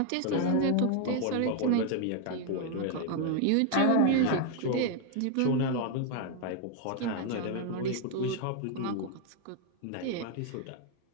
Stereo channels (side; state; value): both; different; correlation 0.00